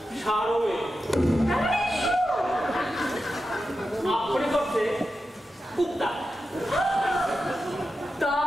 সারমে আক্ষরিক অর্থে কুত্তা।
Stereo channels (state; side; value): normal; both; correlation 0.90